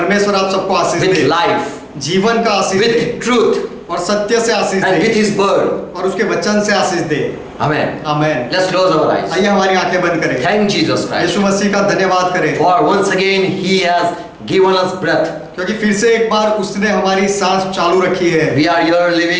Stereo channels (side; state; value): both; identical; correlation 1.00